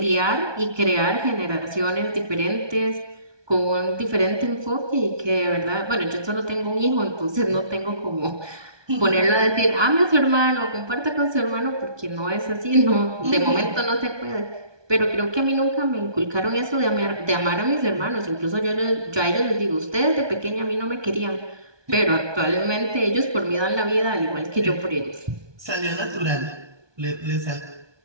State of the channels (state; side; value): late; left; 1.2 ms